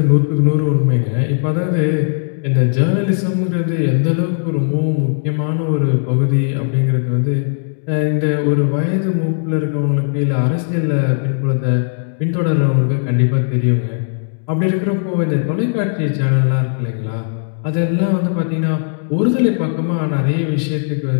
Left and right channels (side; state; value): right; silent; digital silence